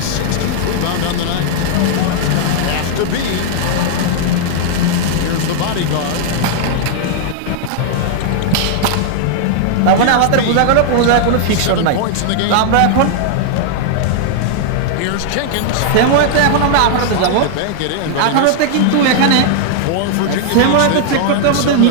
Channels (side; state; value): both; different; correlation -0.01